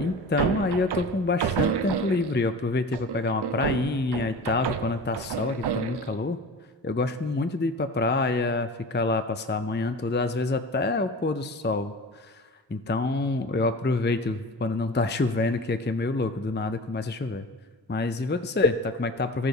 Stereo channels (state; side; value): normal; both; correlation 0.35